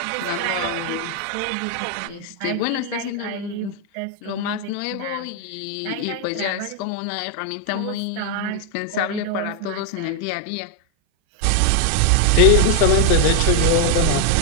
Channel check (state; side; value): different; both; correlation 0.01